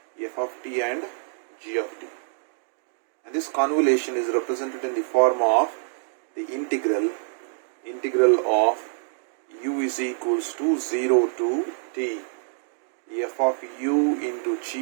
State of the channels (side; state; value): left; silent; digital silence